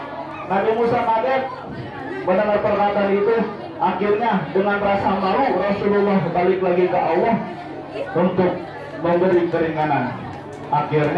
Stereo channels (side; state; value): both; identical; correlation 1.00